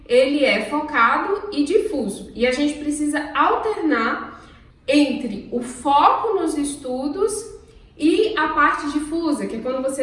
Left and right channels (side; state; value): both; identical; correlation 1.00